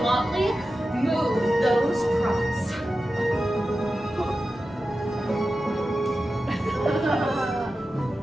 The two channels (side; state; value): both; normal; correlation 0.93